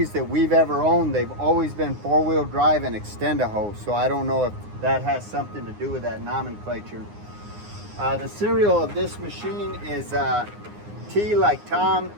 that we've ever owned, they've always been four-wheel drive and extend-a-hose, so I don't know if that has something to do with that nomenclature. The serial of this machine is T like Tom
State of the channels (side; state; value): left; late; 9.7 ms